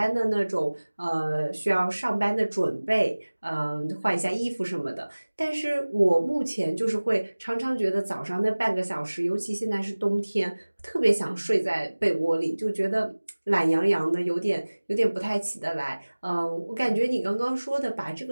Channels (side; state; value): both; inverted; correlation -1.00